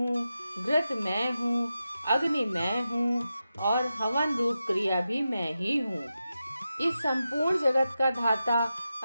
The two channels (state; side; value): inverted; both; correlation -0.90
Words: घृत मैं हूँ, अग्नि मैं हूँ और हवन रूप क्रिया भी मैं ही हूँ। इस संपूर्ण जगत का धाता